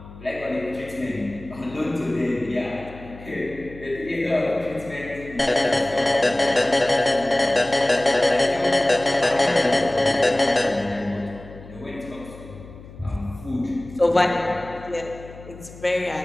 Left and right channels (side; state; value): left; noise; hum, 17 dB below the sound